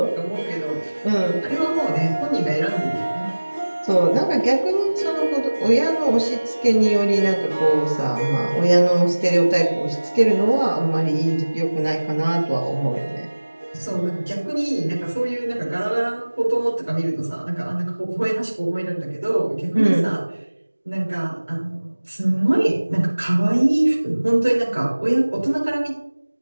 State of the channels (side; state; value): both; inverted; correlation -1.00